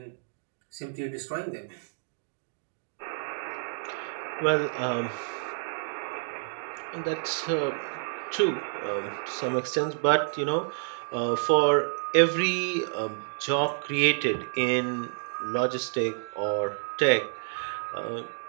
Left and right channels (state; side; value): silent; left; digital silence